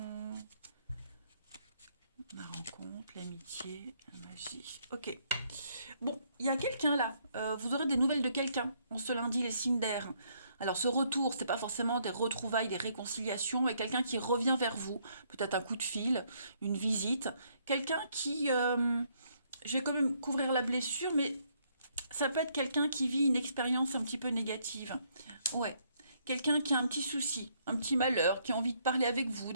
La rencontre, l'amitié, la magie. Ok. Bon, il y a quelqu'un là. Vous aurez des nouvelles de quelqu'un en ce lundi, les signes d'air. Alors, ce retour, c'est pas forcément des retrouvailles, des réconciliations, mais quelqu'un qui revient vers vous. Peut-être un coup de fil, une visite. Quelqu'un qui. Je vais quand même couvrir la blessure, mais ça peut être quelqu'un qui vit une expérience un petit peu négative. Ouais. Quelqu'un qui a un petit souci, un petit malheur, qui a envie de parler avec vous,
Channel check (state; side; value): inverted; both; correlation -0.70